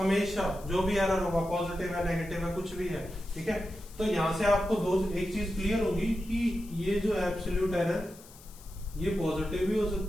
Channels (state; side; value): noise; left; hiss, 21 dB below the sound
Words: जो भी एरर होगा, पॉजिटिव है नेगेटिव है कुछ भी है। ठीक है, तो यहां से आपको एक चीज क्लियर होगी कि ये जो एब्सोल्यूट एरर ये पॉजिटिव भी हो